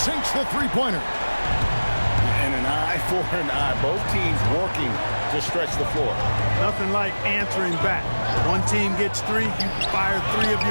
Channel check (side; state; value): both; inverted; correlation -1.00